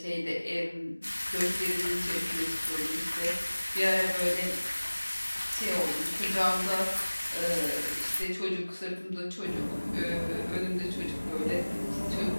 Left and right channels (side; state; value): both; inverted; correlation -1.00